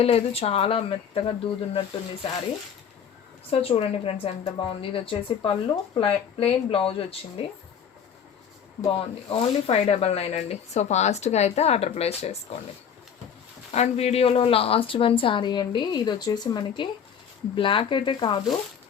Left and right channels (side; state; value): right; quieter; 7.7 dB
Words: లేదు, చాలా మెత్తగా దూదున్నట్టుంది శారీ. సో చూడండి ఫ్రెండ్స్ ఎంత బాగుంది. ఇది వచ్చేసి పళ్ళు, ప్లెయిన్ బ్లౌజ్ వచ్చింది, బాగుంది. ఓన్లీ 599 అండి. సో ఫాస్ట్గా అయితే ఆర్డర్ ప్లేస్ చేసుకోండి. అండ్ వీడియోలో లాస్ట్ వన్ శారీ అండి, ఇది వచ్చేసి మనకి బ్లాక్ అయితే కాదు,